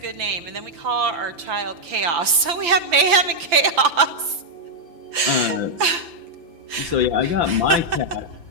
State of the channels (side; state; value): left; late; 5.9 ms